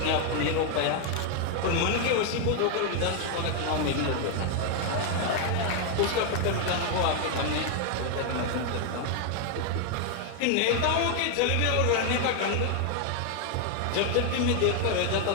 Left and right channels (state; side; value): different; both; correlation 0.01